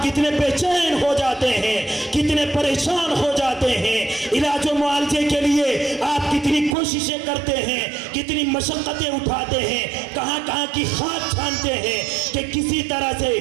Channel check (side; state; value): left; drops out; at 6.8 s